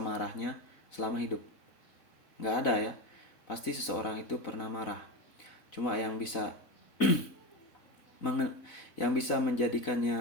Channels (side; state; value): right; late; 4.1 ms